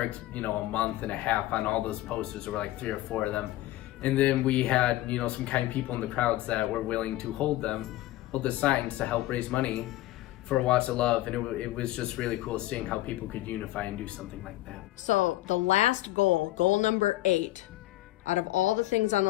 a month and a half on all those posters. There were like 3 or 4 of them, and then we had some kind people in the crowds that were willing to hold the signs to help raise money for Watts of Love, and it was just really cool seeing how people could unify and do something like that. So the last goal number 8, out of all the things on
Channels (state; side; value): quieter; right; 16.4 dB